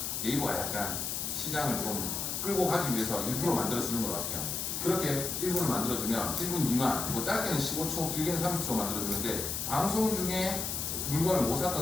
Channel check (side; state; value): left; noise; hiss, 2 dB below the sound